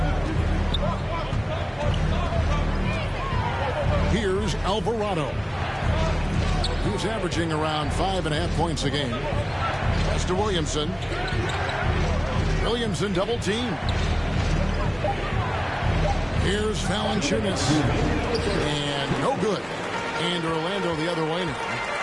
Here's Alvarado. He's averaging around 5.5 points a game. Pass to Williamson. Williamson double team. Here's Valanciunas. And no good. And Orlando the other way now.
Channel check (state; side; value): identical; both; correlation 1.00